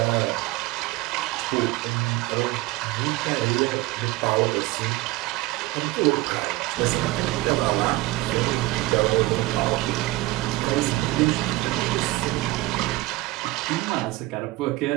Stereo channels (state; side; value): quieter; left; 19.6 dB